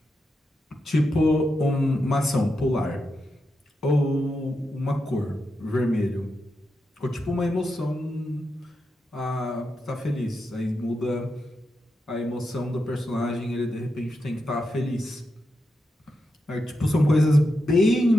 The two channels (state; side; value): normal; both; correlation 0.87